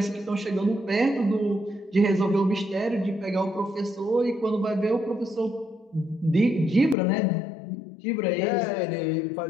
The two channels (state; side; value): drops out; right; at 7.0 s